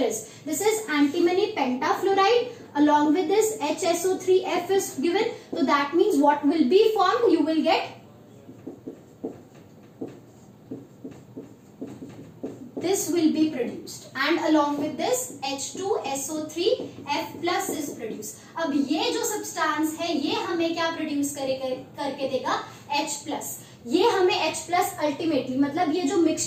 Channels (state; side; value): identical; both; correlation 1.00